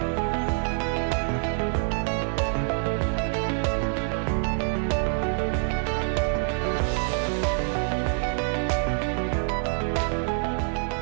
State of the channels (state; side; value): silent; left; 61 dB below the other